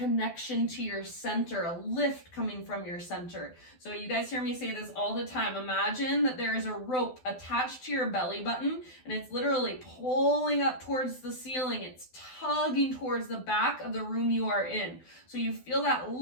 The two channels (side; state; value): right; late; 12 ms